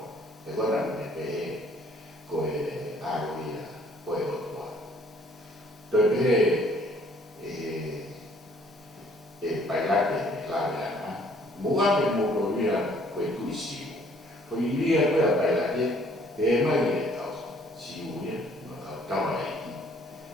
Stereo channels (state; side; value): normal; both; correlation 0.60